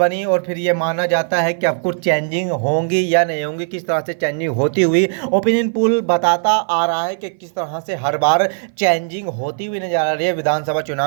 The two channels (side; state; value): left; silent; 59 dB below the other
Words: और फिर ये माना जाता है कि अब कुछ चेंजिंग होंगी या नहीं होंगी। किस तरह से चेंजिंग होती हुई ओपिनियन पोल बताता आ रहा है कि किस तरह से हर बार चेंजिंग होती हुई नजर आ रही है विधानसभा